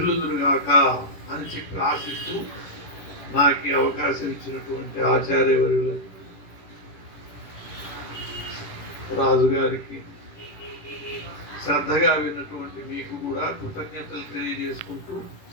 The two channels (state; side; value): late; right; 10 ms